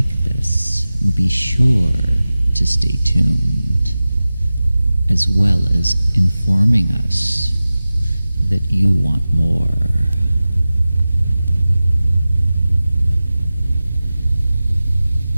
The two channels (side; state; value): both; inverted; correlation -0.96